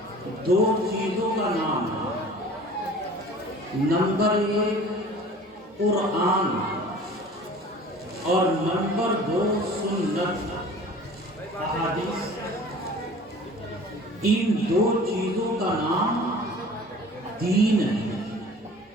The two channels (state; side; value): normal; both; correlation 0.45